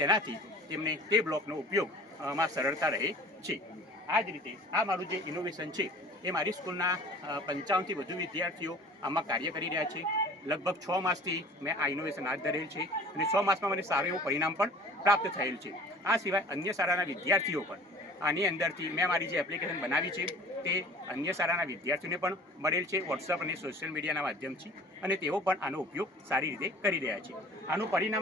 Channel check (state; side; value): normal; both; correlation 0.46